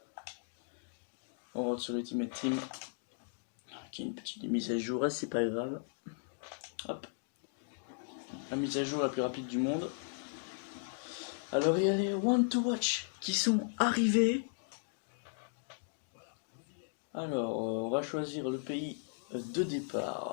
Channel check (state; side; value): silent; right; digital silence